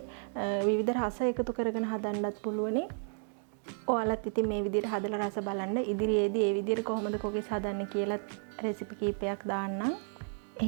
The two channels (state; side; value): silent; left; 56 dB below the other